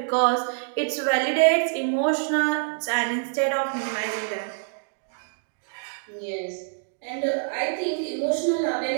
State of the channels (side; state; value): left; silent; digital silence